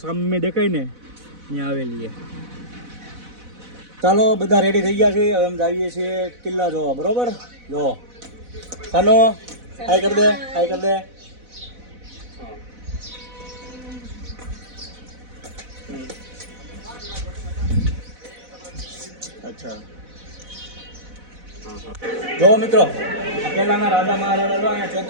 સામે દેખાય ને ત્યાં હવેલી છે. ચાલો બધા રેડી થઈ ગયા છે. હવે અમે જઈએ છીએ કિલ્લા જોવા. બરોબર, જો સાનો હાય કર દે, હાય કર દે. अच्छा જો મિત્રો, પેલાના રાજા મહારાજા જો અહીંયા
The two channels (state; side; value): late; left; 4.0 ms